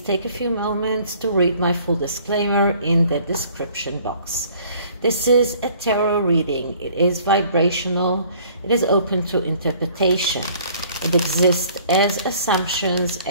take a few moments to read my full disclaimer in the description box. This is a tarot reading. It is vibrational. It is open to interpretation. It exists as assumptions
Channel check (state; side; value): inverted; both; correlation -0.55